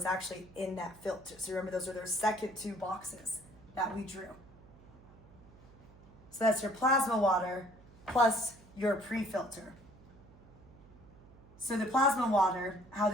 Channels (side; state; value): right; noise; hum, 23 dB below the sound